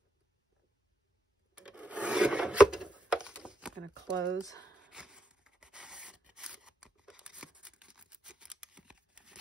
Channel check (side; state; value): both; normal; correlation 0.82